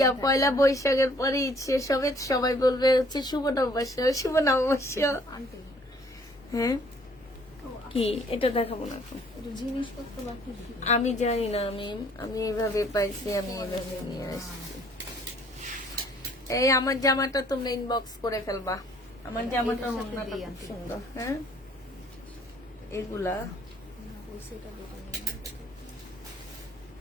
পয়লা বৈশাখের পরে ঈদ শেষ হবে। সবাই বলবে হচ্ছে শুভ নববর্ষ, শুভ নববর্ষ। হ্যাঁ কি এটা দেখাবো না এখন। জিনিসপত্র বাকি আমি জানি না, আমি এইভাবে পাইছি, আমি এইভাবে নিয়ে আসছি। এই আমার জামাটা তোমরা ইনবক্স করে ফেলবা। আমার জামাটা ওড়নাটা খুব সুন্দর। হ্যাঁ এগুলা সেটা দোকানে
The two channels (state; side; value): normal; both; correlation 0.60